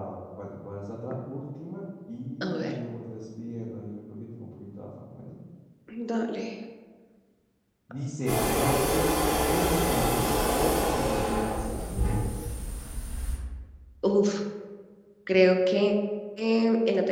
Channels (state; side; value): identical; both; correlation 1.00